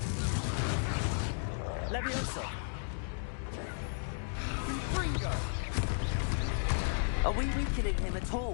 Leviosa! Are we weakening him at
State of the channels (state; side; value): silent; right; digital silence